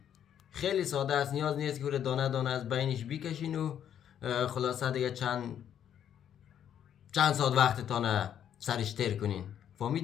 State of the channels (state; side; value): quieter; right; 9.6 dB